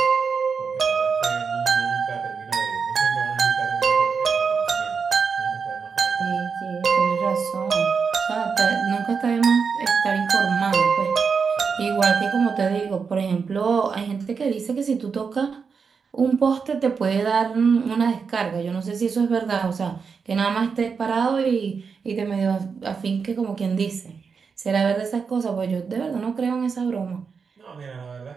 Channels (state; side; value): quieter; left; 5.6 dB